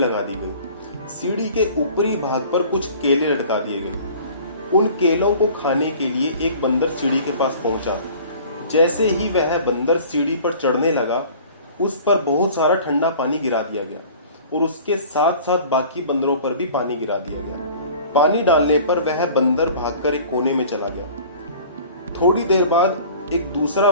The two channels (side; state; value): both; inverted; correlation -0.46